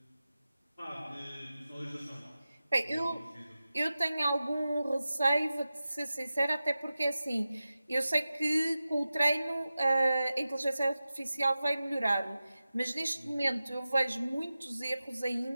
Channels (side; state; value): both; inverted; correlation -0.94